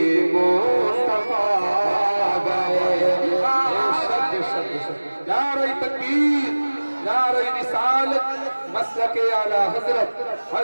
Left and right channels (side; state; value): both; inverted; correlation -1.00